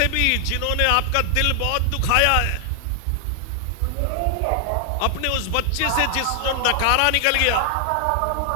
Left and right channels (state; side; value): different; both; correlation 0.00